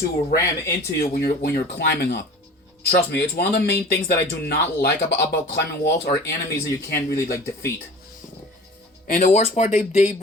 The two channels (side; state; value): both; normal; correlation 0.41